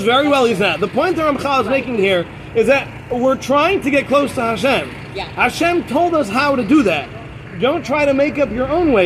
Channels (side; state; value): both; identical; correlation 1.00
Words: very well he's not. The point that Ramchal is making here is that we're trying to get close to Hashem. Yeah. Hashem told us how to do that. Don't try to make up your own